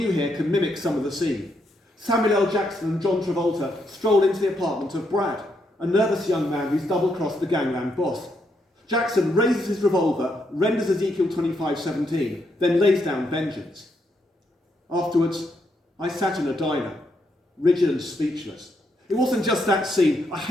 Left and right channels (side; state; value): both; normal; correlation 0.78